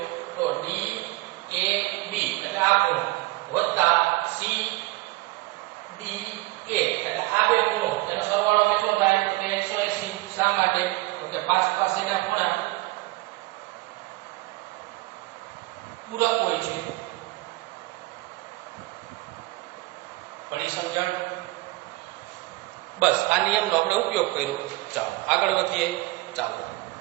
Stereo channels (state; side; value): quieter; left; 20.7 dB